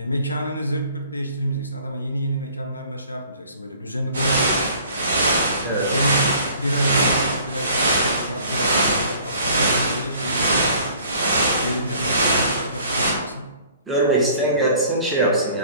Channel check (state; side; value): inverted; both; correlation -0.53